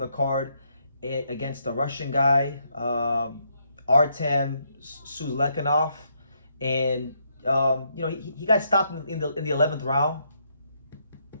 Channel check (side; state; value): both; inverted; correlation -0.75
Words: card against the Russian guy, Artem Suzlekanov, and he got stopped in the 11th round.